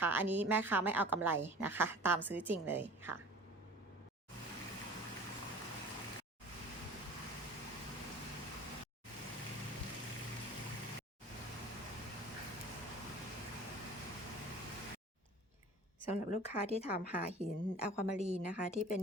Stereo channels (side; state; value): both; normal; correlation 0.43